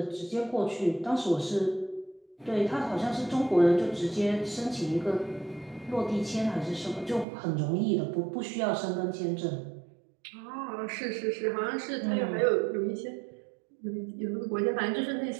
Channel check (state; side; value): drops out; left; at 7.2 s